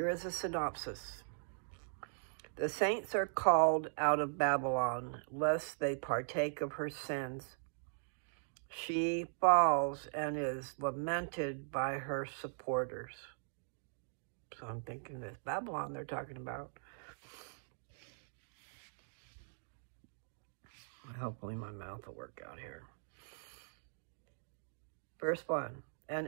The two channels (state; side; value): silent; left; digital silence